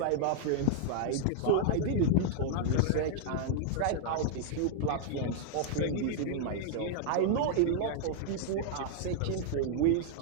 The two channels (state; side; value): different; both; correlation 0.00